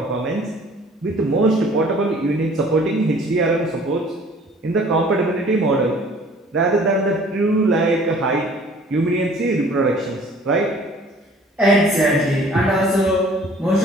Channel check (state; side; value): normal; both; correlation 0.52